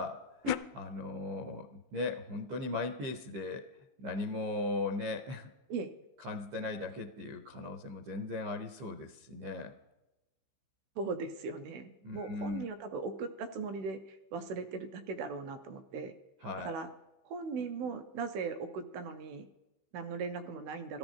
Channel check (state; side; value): late; left; 15 ms